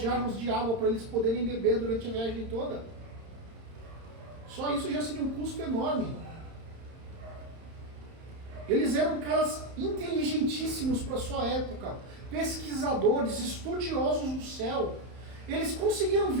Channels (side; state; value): left; late; 31 ms